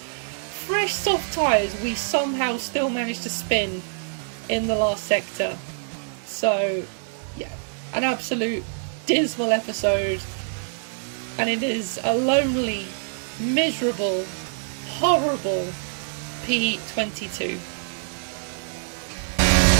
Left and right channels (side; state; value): left; silent; digital silence